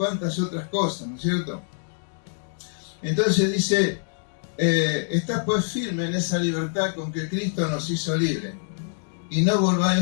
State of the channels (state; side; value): silent; right; digital silence